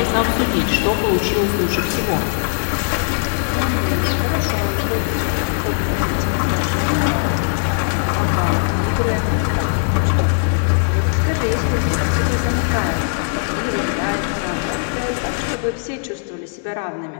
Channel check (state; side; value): silent; right; digital silence